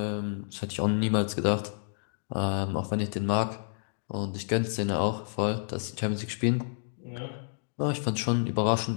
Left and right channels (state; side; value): silent; right; digital silence